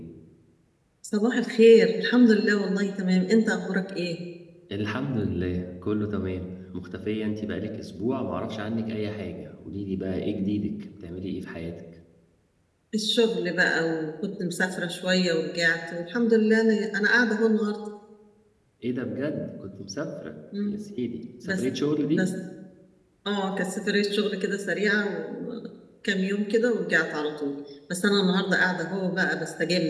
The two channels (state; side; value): identical; both; correlation 1.00